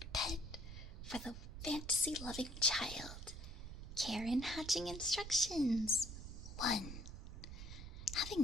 pet for the fantasy-loving child. Care and hatching instructions. 1.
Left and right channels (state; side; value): noise; right; rumble, 9 dB below the sound